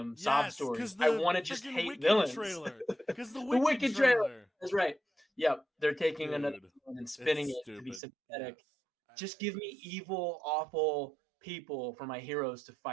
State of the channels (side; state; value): left; drops out; at 8.0 s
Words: sob Yes, stories. because I the want to just freaking hate Wicked villains." trailer. Because the The Wicked Wicked trailer. trailer, That's right. Yep, they're taking another dude. villain and It's spinning it to be stupid. Yes. sympathetic. Just give me It's, evil, awful people for my heroes to